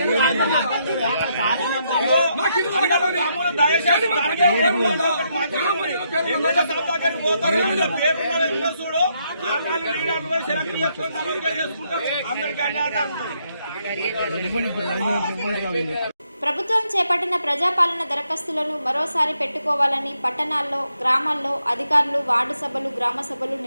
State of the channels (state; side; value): inverted; both; correlation -0.76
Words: దయచేసి పేరు చూడు, సెలెక్ట్ చేసుకుంటారు. అందరికీ అన్యాయం. ప్రభుత్వం చేపట్టిన ప్రజాపాలన దరఖాస్తులను మరోసారి పెట్టుకోవాలని పట్టణాల్లో, గ్రామాల్లో అధికారులు వార్డు సభలు, గ్రామ సభలు